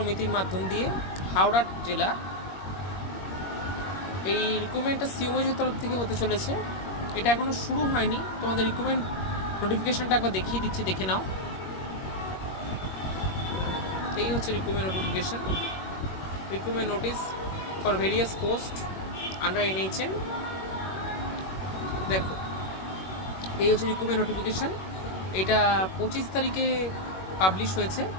মাধ্যম দিয়ে হাওড়া জেলা। এই রিক্রুটমেন্টটা সিওমএইচের তরফ থেকে হতে চলেছে। এটা এখনও শুরু হয়নি। তোমাদের রিক্রুটমেন্ট নোটিফিকেশানটা একবার দেখিয়ে দিচ্ছি, দেখে নাও। এই হচ্ছে recruitment notification. Recruitment notice for various post under NHM। দেখো, এই হচ্ছে রিক্রুটমেন্ট নোটিফিকেশান। এটা 25 তারিখে পাবলিশ হয়েছে।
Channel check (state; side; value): late; right; 21 ms